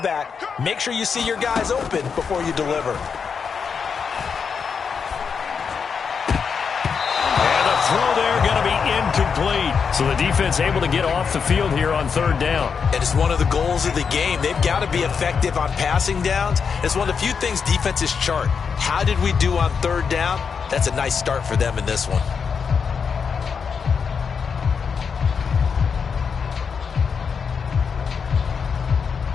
make sure you see your guys open before you deliver? Throw there going to be incomplete. So the defense able to get off the field here on third down. And it's one of the goals of the game. They've got to be effective on passing downs. It's one of the few things defenses chart. How did we do on third down? That's a nice start for them in this one.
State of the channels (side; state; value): right; quieter; 6.1 dB